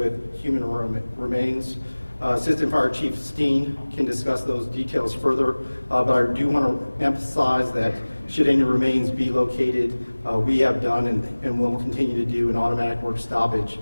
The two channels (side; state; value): both; inverted; correlation -1.00